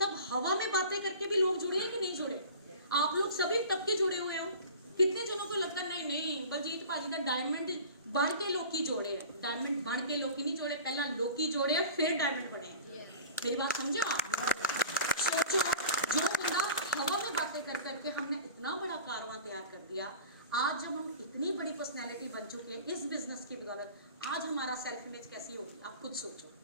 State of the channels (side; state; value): both; inverted; correlation -0.40